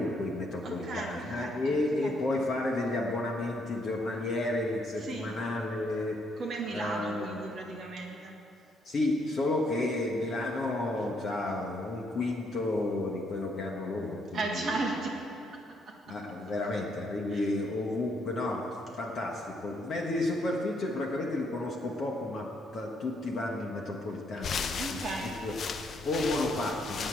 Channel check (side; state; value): both; normal; correlation 0.72